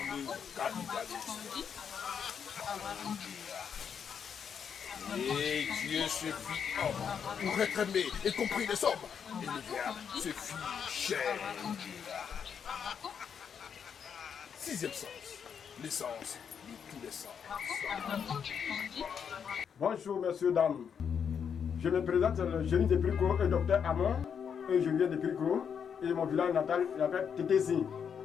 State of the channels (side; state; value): right; quieter; 7.3 dB